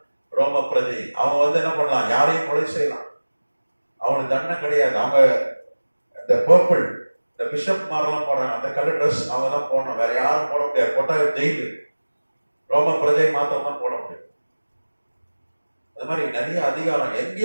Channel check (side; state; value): both; inverted; correlation -1.00